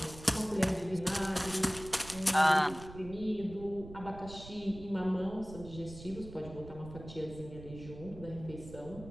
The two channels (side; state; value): right; noise; rumble, 14 dB below the sound